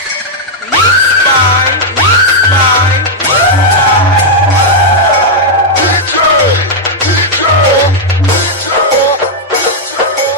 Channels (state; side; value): normal; both; correlation -0.04